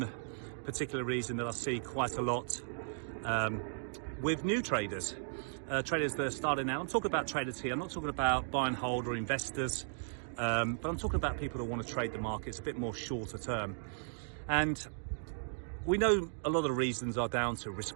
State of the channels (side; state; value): left; silent; digital silence